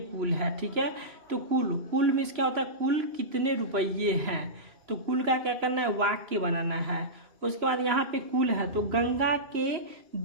है। ठीक है, तो कुल मीन्स क्या होता है? कुल कितने रुपये हैं। तो कुल का क्या करना है? वाक्य बनाना है। उसके बाद यहाँ पे कुल है, तो गंगा के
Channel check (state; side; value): late; left; 2.9 ms